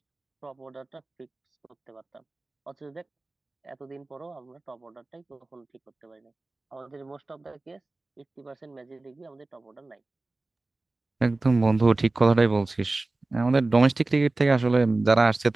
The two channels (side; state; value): left; quieter; 3.1 dB